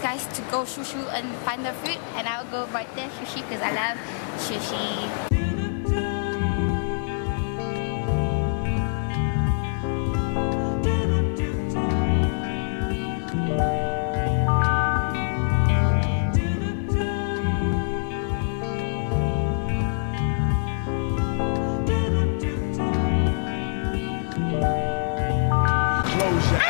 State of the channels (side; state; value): right; silent; 59 dB below the other